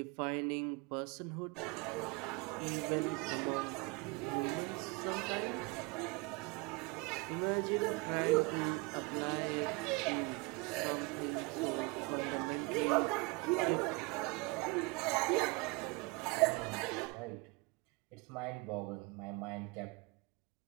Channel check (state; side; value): quieter; left; 26.2 dB